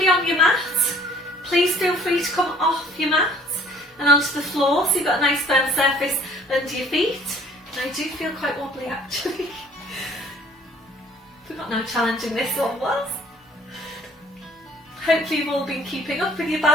on your mat, please feel free to come off your mat and onto the floor so you've got a nice firm surface under your feet. And I do feel quite wobbly actually. Forgot how challenging this one was. Hopefully you've all been keeping up with your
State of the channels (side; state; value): both; normal; correlation 0.55